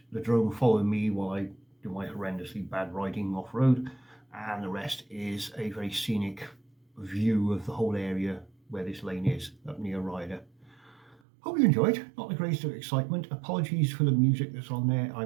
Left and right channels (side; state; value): left; drops out; at 11.2 s